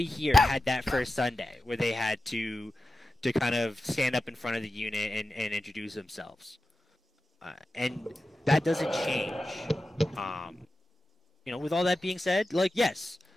here had that first Sunday where they had to kind of stand up in front of the unit and introduce themselves. And that doesn't change. You know, with all that being said, like, yes,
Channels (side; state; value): both; normal; correlation 0.92